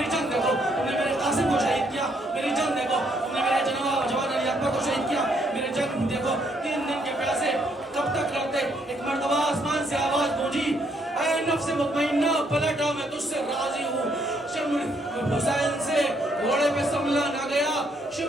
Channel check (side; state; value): both; normal; correlation 0.71